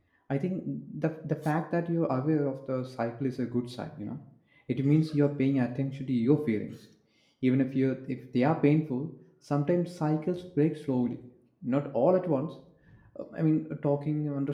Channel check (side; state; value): both; identical; correlation 1.00